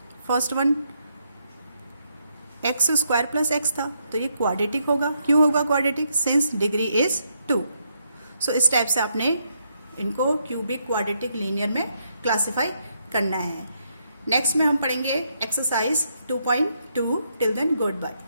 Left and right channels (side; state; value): both; inverted; correlation -0.77